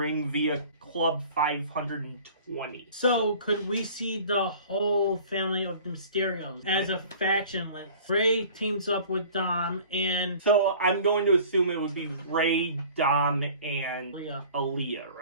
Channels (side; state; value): both; inverted; correlation -0.47